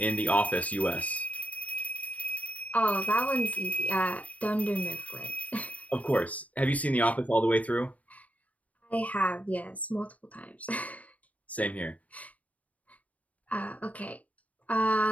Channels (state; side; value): late; right; 0.070 ms